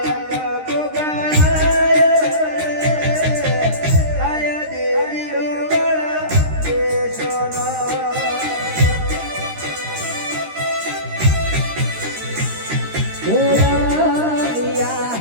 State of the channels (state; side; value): late; left; 13 ms